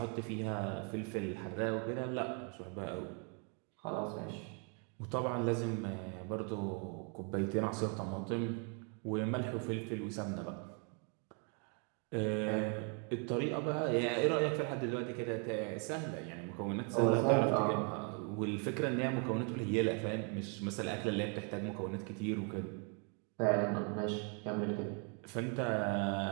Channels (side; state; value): left; quieter; 38.3 dB